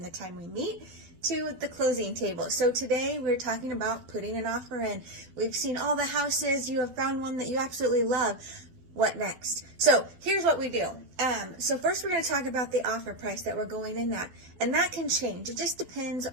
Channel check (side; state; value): left; late; 12 ms